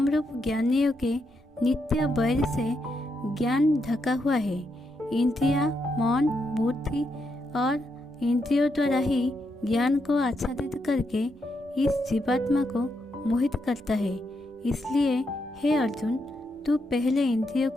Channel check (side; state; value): both; normal; correlation 0.81